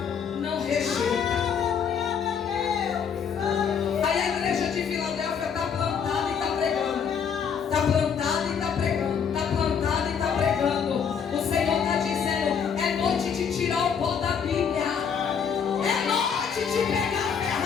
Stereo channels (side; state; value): right; quieter; 7.1 dB